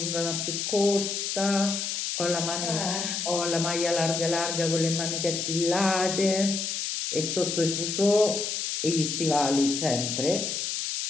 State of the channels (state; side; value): noise; left; hiss, 2 dB below the sound